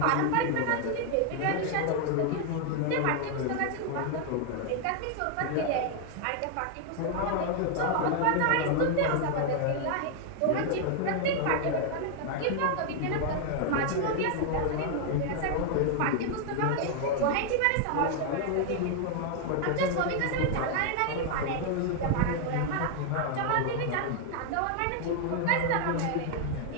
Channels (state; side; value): different; both; correlation 0.00